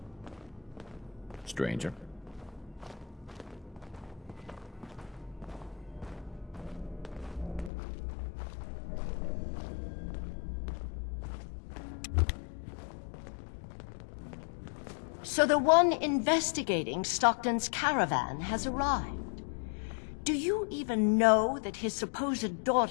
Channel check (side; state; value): right; drops out; at 7.7 s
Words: Stranger. So the one investigating Stockton's caravan has arrived. Do you even know that his supposed